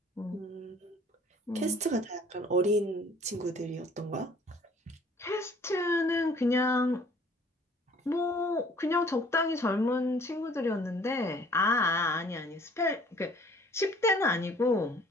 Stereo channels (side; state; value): both; normal; correlation 0.55